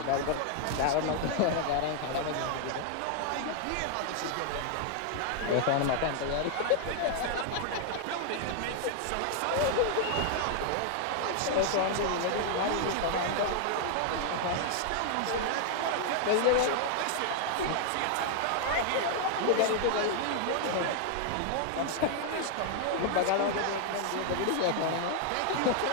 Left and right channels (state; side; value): different; both; correlation 0.00